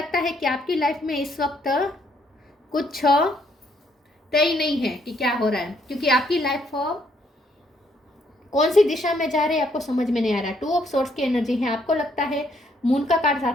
है कि आपकी लाइफ में इस वक्त कुछ तय नहीं है कि क्या हो रहा है, क्योंकि आपकी लाइफ कौन सी दिशा में जा रही है आपको समझ में नहीं आ रहा है। 2 ऑफ सोर्स की एनर्जी है। आपको लगता है मून का कार्ड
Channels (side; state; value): both; normal; correlation 0.70